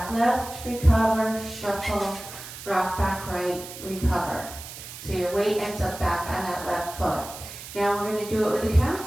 left, recover, shuffle, rock back right, recover. So your weight ends up back on that left foot. Now we're going to do it with the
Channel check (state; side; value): noise; right; hiss, 12 dB below the sound